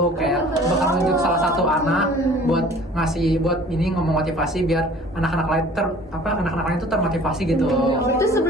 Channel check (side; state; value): both; normal; correlation 0.49